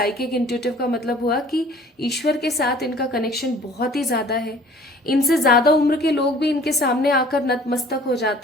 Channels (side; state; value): both; normal; correlation 0.51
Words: इंट्यूटिव का मतलब हुआ कि ईश्वर के साथ इनका कनेक्शन बहुत ही ज्यादा है। इनसे ज्यादा उम्र के लोग भी इनके सामने आकर नतमस्तक हो